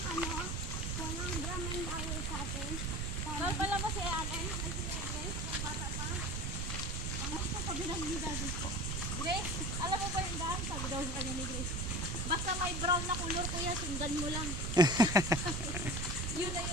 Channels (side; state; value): right; noise; rumble, 1 dB below the sound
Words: walang drum and bawal sa atin. Mahal pala mo si Allen. Ay, si Grace. Yung bata pa. Mga ito, sabi na ni Daddy. Grace, alam mo ba yung daan? Sabi daw sa kanya ni Grace. Basta may brown na kulor, kuya, sundan mo lang. Yun na